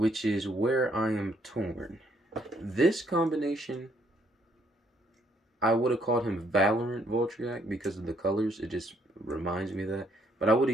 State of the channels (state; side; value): normal; both; correlation 0.69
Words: is where I am torn. This combination, I would have called him Valorant Voltriac because of the colors. It just reminds me of that. But I would